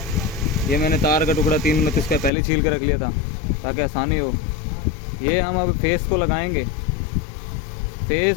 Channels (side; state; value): right; drops out; at 2.3 s